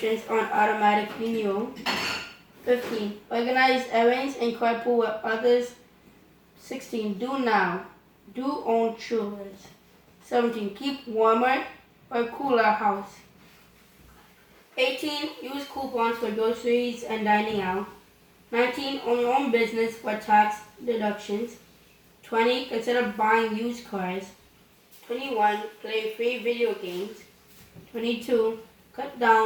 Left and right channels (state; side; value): identical; both; correlation 1.00